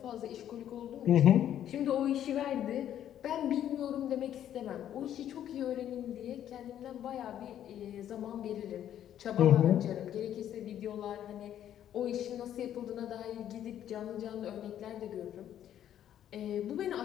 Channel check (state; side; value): quieter; right; 10.8 dB